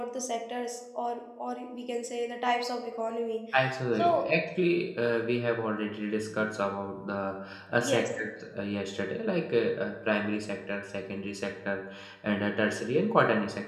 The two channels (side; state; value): both; identical; correlation 1.00